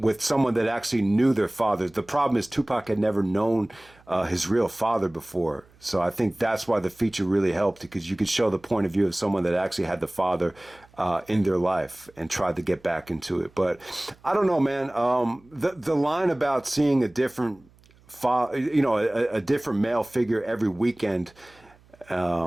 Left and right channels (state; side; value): noise; right; hum, 29 dB below the sound